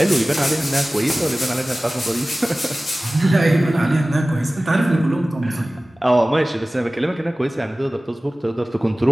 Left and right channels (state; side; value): normal; both; correlation 0.97